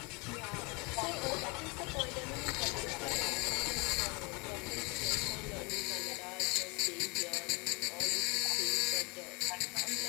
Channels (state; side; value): quieter; right; 29.2 dB